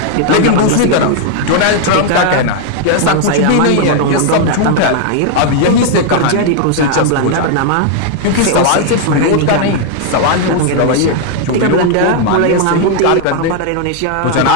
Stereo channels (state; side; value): different; both; correlation 0.00